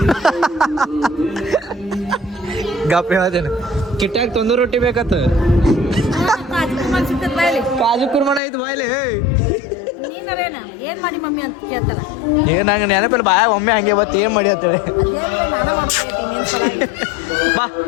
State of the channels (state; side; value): drops out; right; at 8.4 s